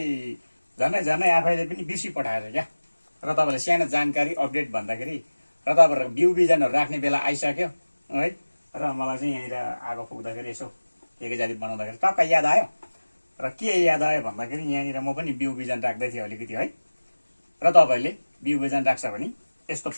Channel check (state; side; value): inverted; both; correlation -1.00